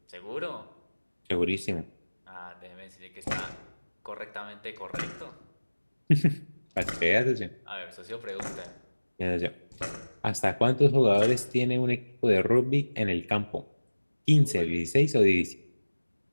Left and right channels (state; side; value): inverted; both; correlation -1.00